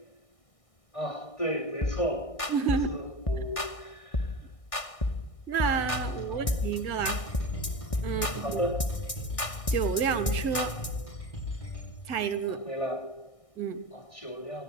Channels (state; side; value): late; right; 1.6 ms